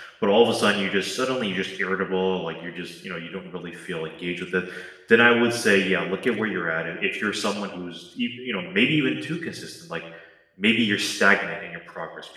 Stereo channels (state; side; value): identical; both; correlation 1.00